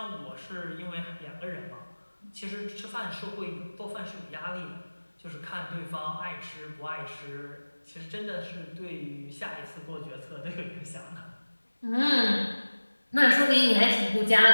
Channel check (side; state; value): both; inverted; correlation -1.00